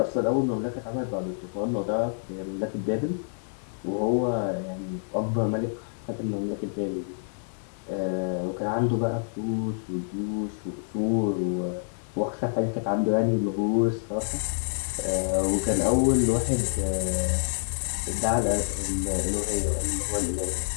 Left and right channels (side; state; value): right; silent; 60 dB below the other